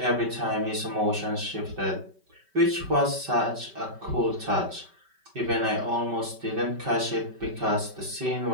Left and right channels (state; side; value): late; left; 5.2 ms